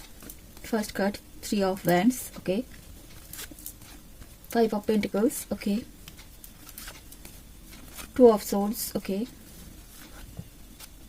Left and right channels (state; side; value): identical; both; correlation 1.00